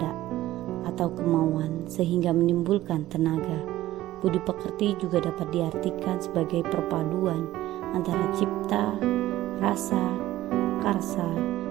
atau kemauan sehingga menimbulkan tenaga. Budi pekerti juga dapat diartikan sebagai perpaduan antara cipta, rasa, karsa,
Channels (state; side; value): quieter; left; 15.2 dB